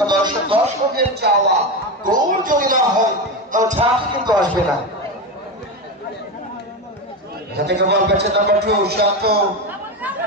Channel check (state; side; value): normal; both; correlation 0.17